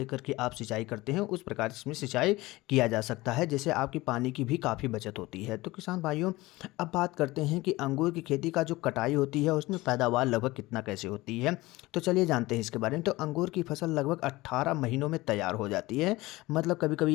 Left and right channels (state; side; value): quieter; right; 19.9 dB